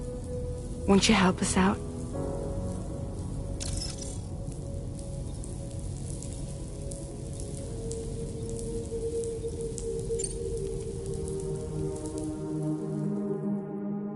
won't you help us out?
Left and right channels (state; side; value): identical; both; correlation 1.00